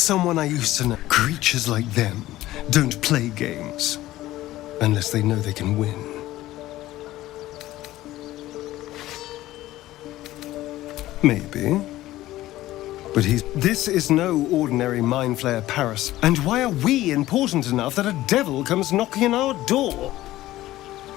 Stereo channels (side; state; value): right; quieter; 15.7 dB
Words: I used to know. Creatures like them don't play games. Unless they know they can win. Maybe. But this is no ordinary Mind Flayer Paris. And why are we important enough that a devil comes knocking on our door?